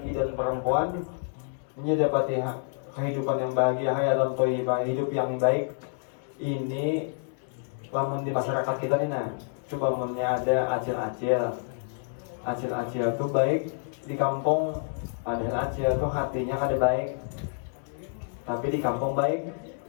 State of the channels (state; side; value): silent; right; digital silence